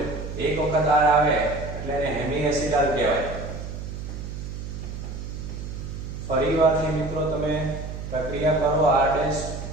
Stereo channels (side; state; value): right; noise; hum, 8 dB below the sound